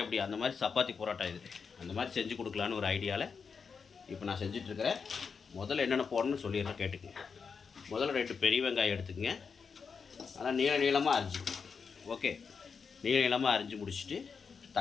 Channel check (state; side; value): quieter; right; 5.7 dB